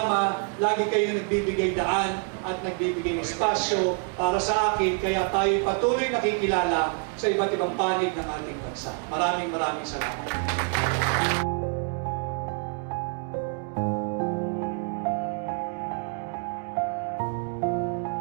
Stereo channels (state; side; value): quieter; left; 39.5 dB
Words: lagi kayong nagbibigay daan at nagbibigay espasyo para sa akin, kaya tayo patuloy nakikilala sa iba't ibang panig ng ating bansa. Maraming salamat.